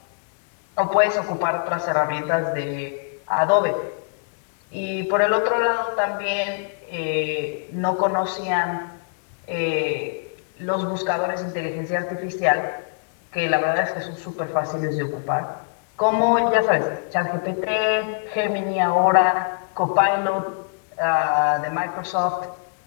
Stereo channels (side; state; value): right; silent; 59 dB below the other